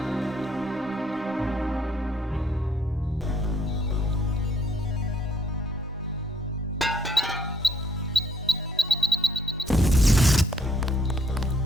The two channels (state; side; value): normal; both; correlation 0.67